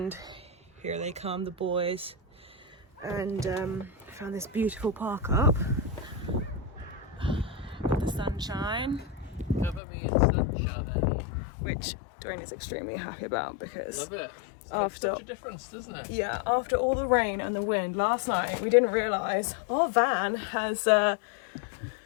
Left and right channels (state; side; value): drops out; right; at 9.8 s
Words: Here they come, the boys, and found this beautiful park up. Got the sunshine. Cover me in sunshine. Which Dwayne is extremely happy about because Love it. after Such a difference, doesn't it? yeah, after all the rain and the wind last night, we didn't realise our van has